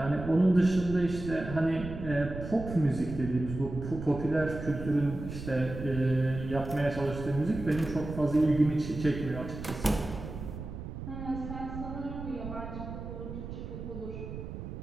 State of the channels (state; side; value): noise; right; rumble, 9 dB below the sound